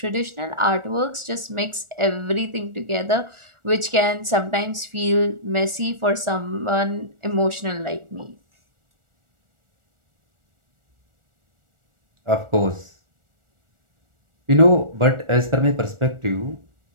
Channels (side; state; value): left; late; 1.4 ms